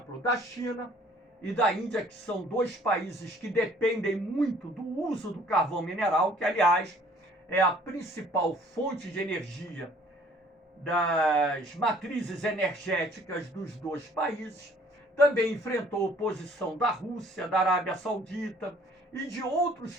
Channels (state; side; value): normal; both; correlation 0.57